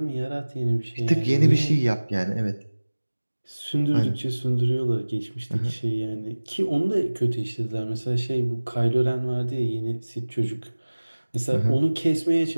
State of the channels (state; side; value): inverted; both; correlation -1.00